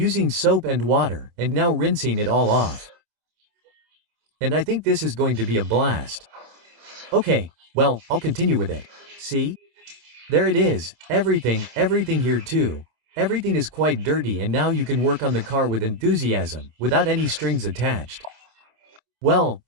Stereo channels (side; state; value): left; late; 26 ms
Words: soap and water, and now rinsing it all off. And I think this is going to be a blast. Okay, well, I'll continue with it. See? There it is, everything here too. Everything is quite dirty and now you can work on the car with enthusiasm, without any strings attached. Well,